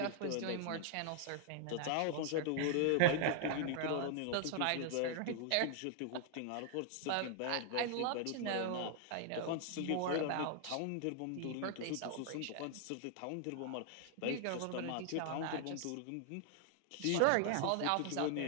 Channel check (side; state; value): both; different; correlation 0.00